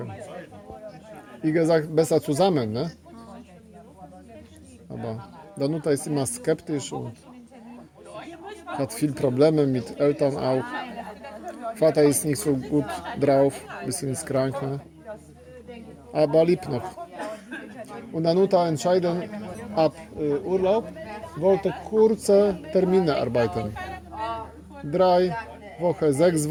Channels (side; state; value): both; identical; correlation 1.00